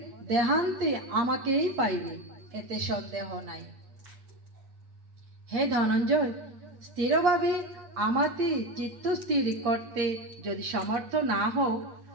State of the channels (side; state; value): left; late; 8.5 ms